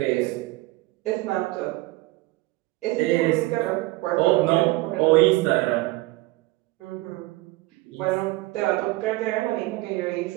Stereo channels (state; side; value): quieter; left; 20.1 dB